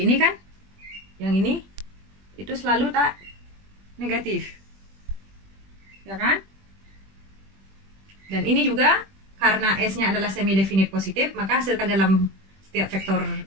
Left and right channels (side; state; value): left; late; 21 ms